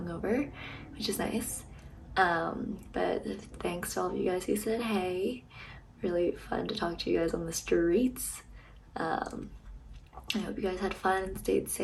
which is nice. But thanks to all of you guys who said hey. Really fun to talk to you guys on the streets. I hope you guys had fun and stayed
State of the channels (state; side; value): identical; both; correlation 1.00